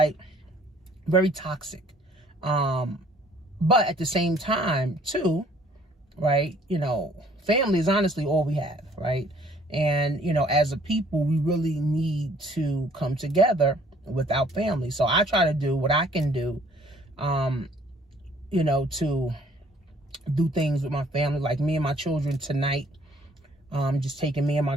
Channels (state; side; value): normal; both; correlation 0.59